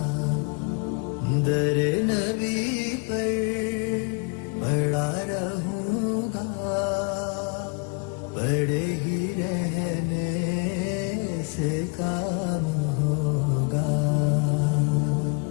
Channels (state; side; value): quieter; right; 32.2 dB